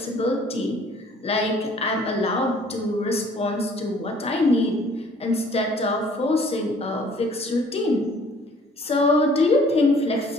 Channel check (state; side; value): normal; both; correlation 0.56